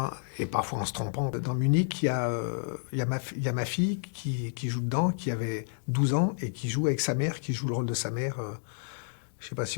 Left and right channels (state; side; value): silent; right; digital silence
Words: et parfois en se trompant. Dans Munich, il y a ma fille qui joue dedans, qui avait 12 ans, et qui joue avec sa mère, qui joue le rôle de sa mère. Je ne sais pas si